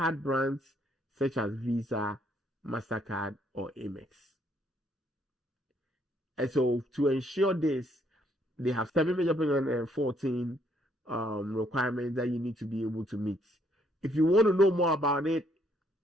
brands such as Visa, MasterCard, or Amex. And so to ensure this, they have 7 major payment and 14 requirements that you need to be able to meet. If you want to know more about it,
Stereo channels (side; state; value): both; normal; correlation 0.69